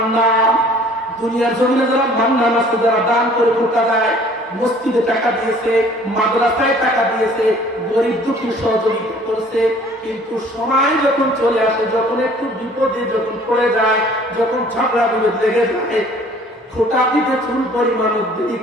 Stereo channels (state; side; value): normal; both; correlation 0.53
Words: দুনিয়ার জমিনে যারা মান্নান আছে, যারা দান করে ফোটা দেয়, মসজিদে টাকা দিয়েছে, মাদ্রাসায় টাকা দিয়েছে, গরিব দুঃখী সহযোগিতা করছে, কিন্তু সময় যখন চলে আসে, যখন একটু বিপদে যখন পড়ে যায়, যখন ঝগড়া বিরোধ লেগে যায়, ফোটা দিতে চুল পরিমাণ দেরি